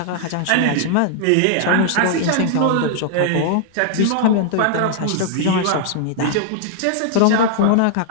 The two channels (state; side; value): different; both; correlation -0.01